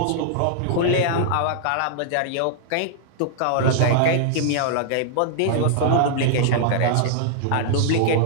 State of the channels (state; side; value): different; both; correlation -0.01